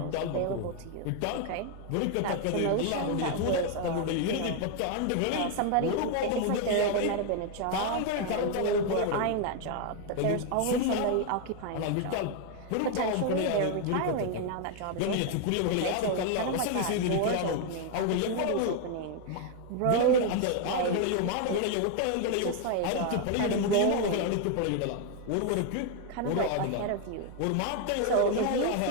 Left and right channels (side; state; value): both; different; correlation 0.00